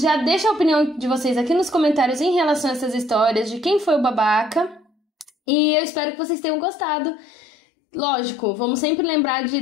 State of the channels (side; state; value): right; drops out; at 5.3 s